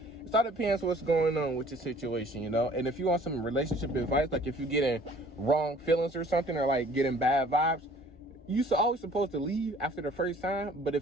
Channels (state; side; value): normal; both; correlation 0.53